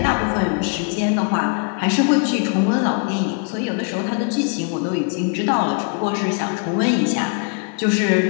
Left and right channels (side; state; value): right; quieter; 36.8 dB